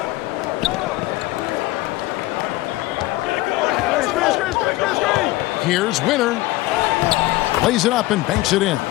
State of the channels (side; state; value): right; quieter; 18.6 dB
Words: Here's Winter. Lays it up and banks it in.